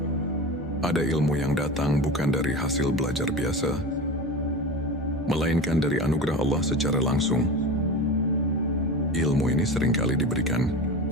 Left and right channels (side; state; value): both; normal; correlation 0.29